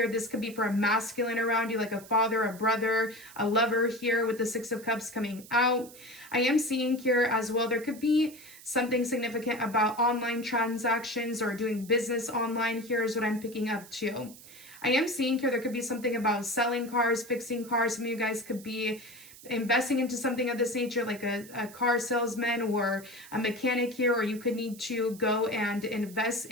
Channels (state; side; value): noise; right; hiss, 19 dB below the sound